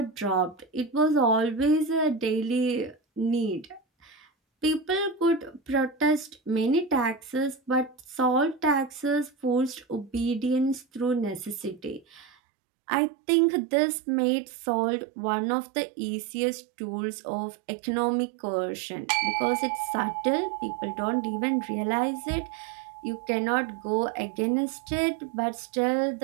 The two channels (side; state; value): left; drops out; at 12.2 s